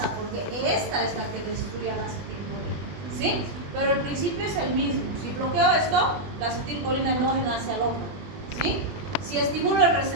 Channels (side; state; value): left; late; 20 ms